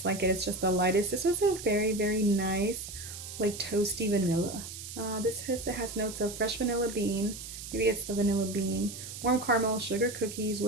it, it's just the lightest. This was a very, very nice, like toasty vanilla. It has notes of fresh vanilla bean, maybe it's the vanilla bean, warm caramel, sugar cookies,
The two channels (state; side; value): noise; right; hiss, 10 dB below the sound